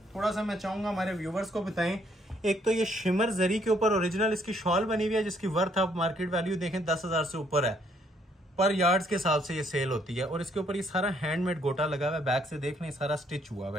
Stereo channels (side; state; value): both; normal; correlation 0.68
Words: थोड़ा सा मैं चाहूंगा हमारे व्यूवर्स को बताएं। एक तो ये शिमर जरी के ऊपर ओरिजिनल इसकी शॉल बनी हुई है, जिसकी वर्थ आप मार्केट वैल्यू देखें 10,000 से ऊपर है। पर यार्ड्स के हिसाब से ये सेल होती है। और इसके ऊपर ये सारा हैंडमेड गोटा लगा हुआ है। बैक से देख लें, सारा स्टिच हुआ हुआ